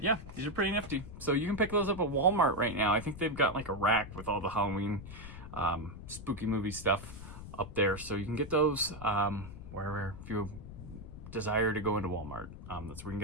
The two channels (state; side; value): noise; left; rumble, 12 dB below the sound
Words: yeah, these are pretty nifty. So you can pick those up at Walmart right now. I think they've got like a rack with all the Halloween spooky movie stuff up there. So you can get those wherever, if you desire to go into Walmart. That's where you can